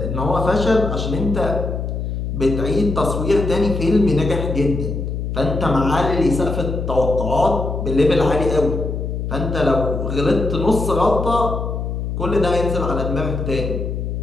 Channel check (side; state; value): left; noise; hum, 3 dB below the sound